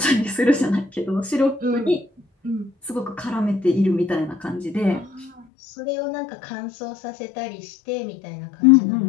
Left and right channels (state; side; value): drops out; right; at 5.5 s